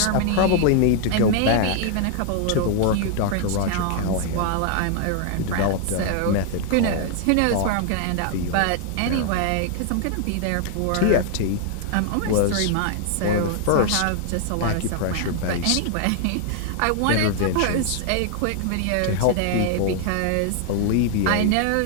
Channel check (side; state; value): both; different; correlation 0.00